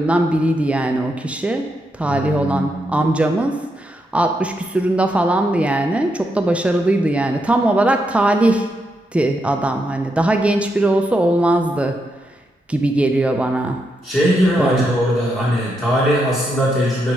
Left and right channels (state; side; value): normal; both; correlation 0.82